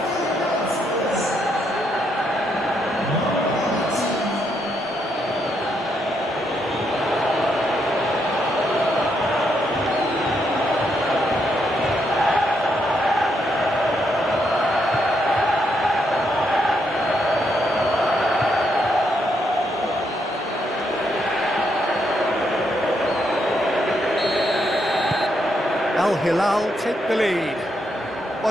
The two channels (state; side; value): normal; both; correlation 0.77